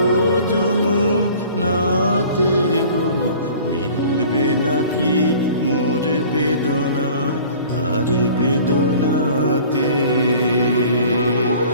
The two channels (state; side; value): inverted; both; correlation -0.47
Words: যমুনাতে গো মিলবে নাকি মোর বেদনা তার বেদনাতে